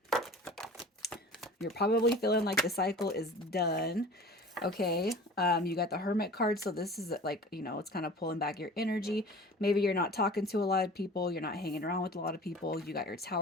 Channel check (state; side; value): normal; both; correlation 0.41